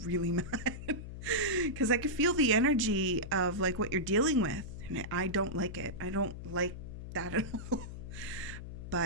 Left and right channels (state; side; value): noise; left; hum, 10 dB below the sound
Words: really mad. Because I can feel the energy of like what you're dealing with, and I don't like it. I don't like that at all.